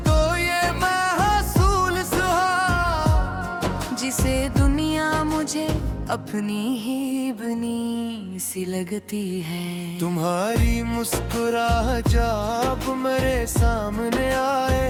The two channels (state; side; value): identical; both; correlation 1.00